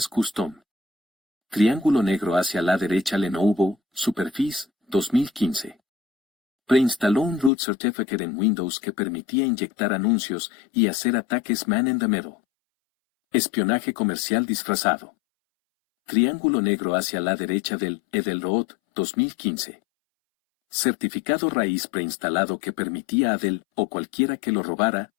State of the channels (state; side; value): drops out; right; at 7.5 s